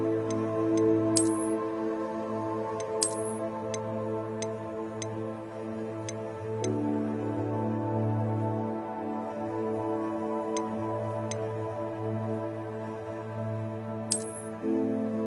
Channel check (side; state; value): both; identical; correlation 1.00